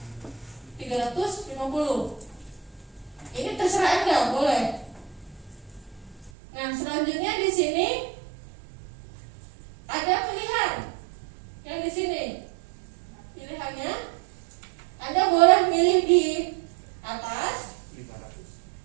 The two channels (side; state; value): left; drops out; at 6.3 s